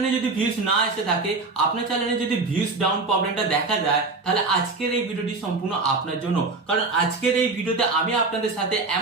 যদি ভিউজ না এসে থাকে, আপনার চ্যানেলে যদি ভিউজ ডাউন প্রবলেমটা দেখা যায়, তাহলে আজকের এই ভিডিওটি সম্পূর্ণ আপনার জন্য। কারণ আজকের এই ভিডিওতে আমি আপনাদের সাথে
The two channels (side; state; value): left; quieter; 3.8 dB